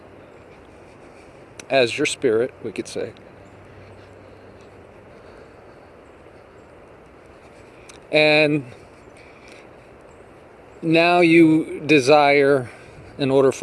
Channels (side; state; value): both; identical; correlation 1.00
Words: as your spirit, we could say. And now you desire, in order